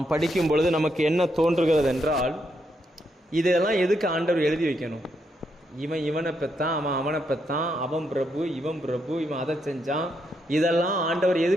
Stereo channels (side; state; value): both; normal; correlation 0.79